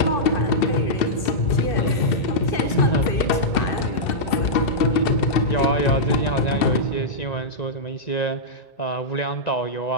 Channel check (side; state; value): right; late; 2.6 ms